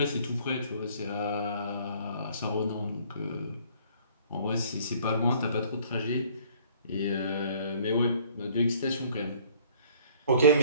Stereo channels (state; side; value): inverted; both; correlation -0.55